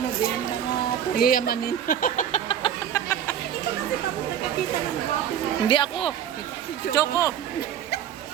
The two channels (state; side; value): quieter; left; 9.5 dB